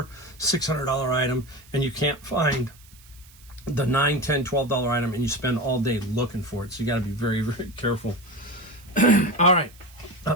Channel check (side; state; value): right; noise; hiss, 25 dB below the sound